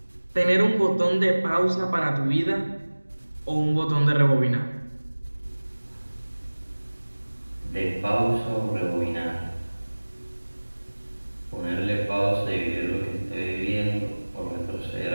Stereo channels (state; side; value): inverted; both; correlation -1.00